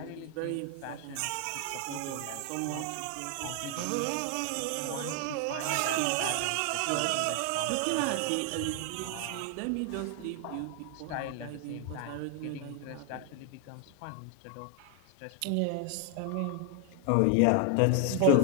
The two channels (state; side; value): different; both; correlation 0.00